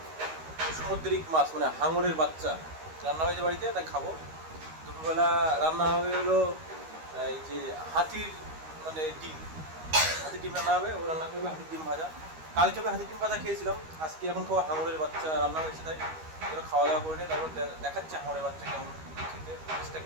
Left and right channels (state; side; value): late; left; 13 ms